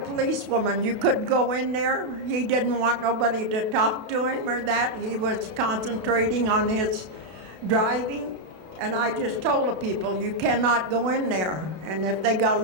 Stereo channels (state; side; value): late; left; 32 ms